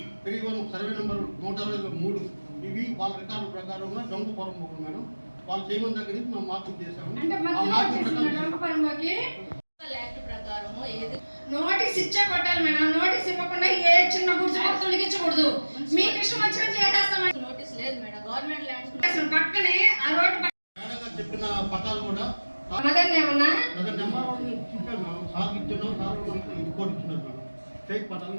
31 సర్వే నెంబర్ 163 ఇవి వాళ్ళ రికార్డు ప్రకారంగా దొంగ పొరపోకు మేడం. వాళ్ళు చేయమని దగ్గర నుంచి మేము మార్కింగ్ చేసాము. అంటే ఆ మధ్యలో మార్కింగ్ వచ్చేసిన ప్రకారం డొంకపరమకి యాక్ట్ ప్రకారం ఏది నోటీస్ ఇచ్చే కొట్టాలి మేడం. నోటీస్ ఇవ్వకుండా ఏ చిన్న గుర్తు తొలగించకూడదు. మీకు ఇష్టం వచ్చినట్టు చేసేస్తామని నోటీస్ లేదు మేడం. గవర్నమెంట్ ల్యాండ్స్ అసలు పక్కనే ఆ రోడ్డు మేడం గారు చెప్పిన పట్టాలు కూడా మదన్ ఏమన్నా నెంబర్ చెప్పాను మేడం. సార్ ఇచ్చిన సార్ మనకి రిపోర్ట్ ఇచ్చినారు మేడం. ఫేక్ పట్టాలు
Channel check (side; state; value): both; inverted; correlation -1.00